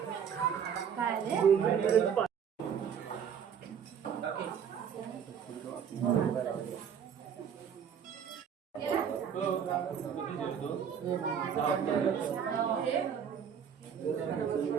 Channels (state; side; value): quieter; left; 7.8 dB